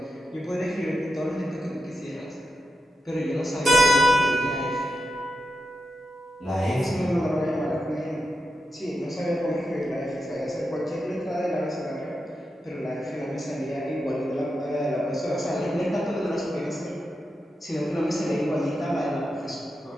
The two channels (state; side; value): normal; both; correlation 0.87